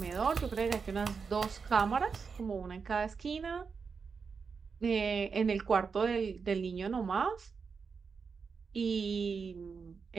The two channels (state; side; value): quieter; left; 5.4 dB